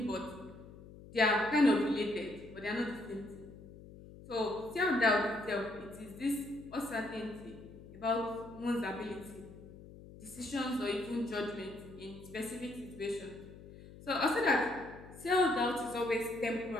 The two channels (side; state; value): left; noise; hum, 17 dB below the sound